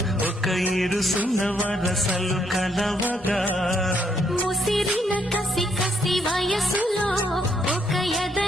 ఒక ఇరుసున్న వరసలు కలవగా ముసిరిన కసి కసి వయసులో ఒక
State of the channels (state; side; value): normal; both; correlation 0.73